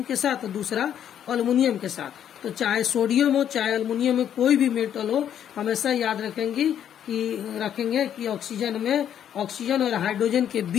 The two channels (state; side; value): quieter; right; 9.6 dB